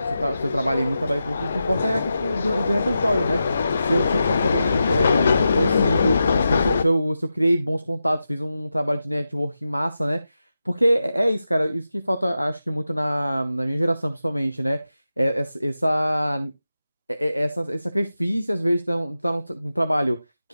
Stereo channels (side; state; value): both; inverted; correlation -0.90